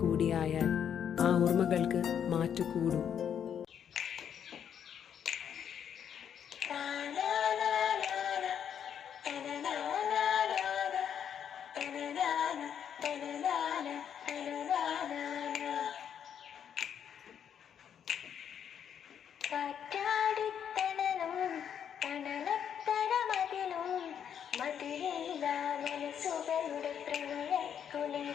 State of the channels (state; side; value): quieter; right; 8.6 dB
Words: കൂടിയായാൽ ആ ഓർമ്മകൾക്ക് മാറ്റുകൂടും. കാറ്റാടിത്തണലും തണലത്തരമതിലും മതിലില്ല മനസ്സുകളുടെ